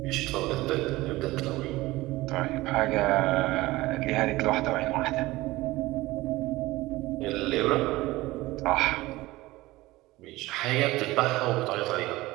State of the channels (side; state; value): left; quieter; 19.0 dB